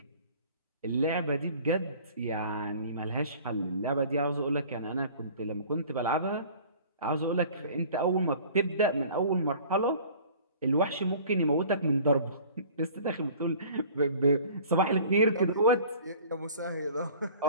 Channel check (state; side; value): inverted; both; correlation -0.47